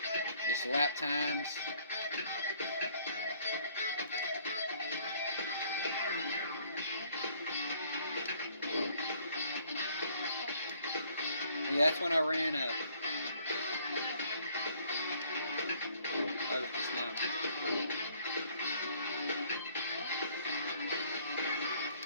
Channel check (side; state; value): both; inverted; correlation -0.61